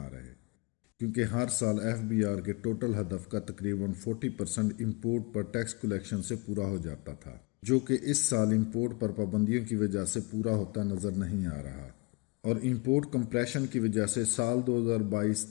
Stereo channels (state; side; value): quieter; right; 28.0 dB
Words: رہے، کیونکہ ہر سال FBR کے ٹوٹل ہدف کا تقریباً 40% امپورٹ پر ٹیکس کلیکشن سے پورا ہو جاتا تھا، جو کہ اس سال امپورٹ پر پابندیوں کی وجہ سے پورا ہوتا نظر نہیں آ رہا، اور امپورٹ کمپریشن کی وجہ سے سال